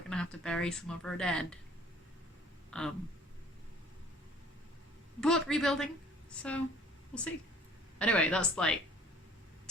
to have to bury some of our dead. But rebuilding, so we'll see. Anyway, that's like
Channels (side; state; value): both; normal; correlation 0.52